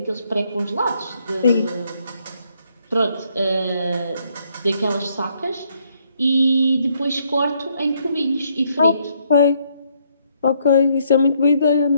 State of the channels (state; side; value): inverted; both; correlation -0.71